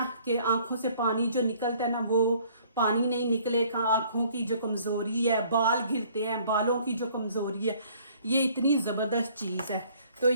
कि आँखों से पानी जो निकलता है ना वो पानी नहीं निकलेगा। आँखों की जो कमज़ोरी है, बाल गिरते हैं, बालों की जो कमज़ोरी है, ये इतनी ज़बरदस्त चीज़ है। तो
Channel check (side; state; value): both; inverted; correlation -0.58